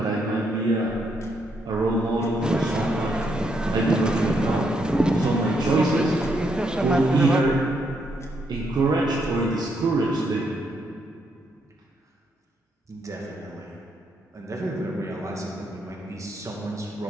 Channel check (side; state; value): both; normal; correlation 0.76